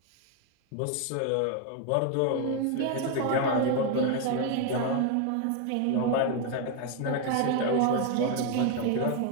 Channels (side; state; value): both; different; correlation 0.01